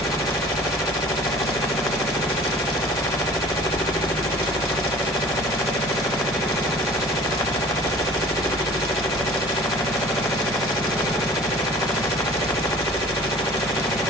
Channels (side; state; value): both; normal; correlation 0.46